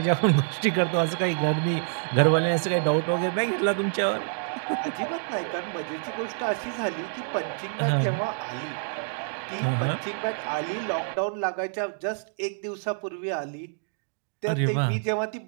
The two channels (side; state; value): left; silent; digital silence